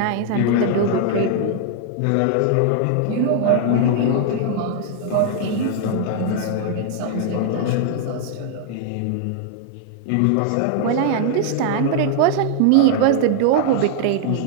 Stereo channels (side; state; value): both; different; correlation 0.00